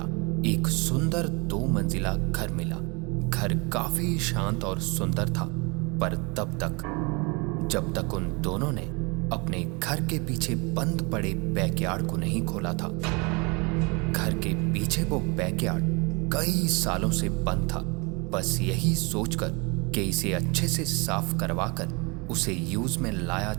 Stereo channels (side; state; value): left; quieter; 29.1 dB